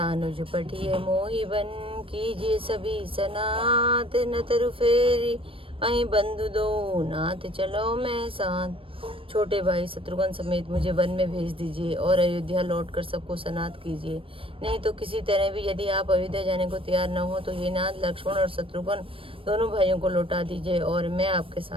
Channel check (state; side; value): late; left; 0.26 ms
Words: पठिए मोहि बन कीजिए सभी सनात न तरु फेरी अहि बंधु दो नाथ चलो मैं साथ। छोटे भाई शत्रुघ्न समेत मुझे वन में भेज दीजिए और अयोध्या लौटकर सबको सनात कीजिए। नहीं तो किसी तरह भी यदि आप अयोध्या जाने को तैयार न हो तो ये नाथ लक्ष्मण और शत्रुघ्न दोनों भाइयों को लौटा दीजिए और मैं आपके